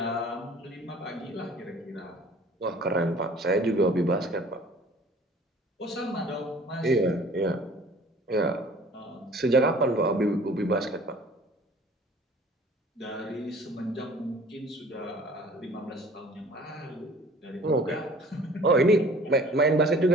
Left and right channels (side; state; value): both; normal; correlation 0.49